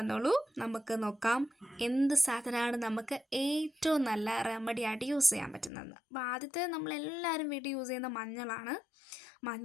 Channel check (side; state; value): right; drops out; at 5.7 s